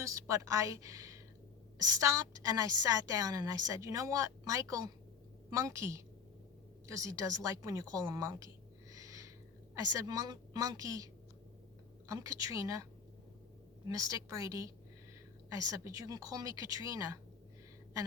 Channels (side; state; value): right; quieter; 6.2 dB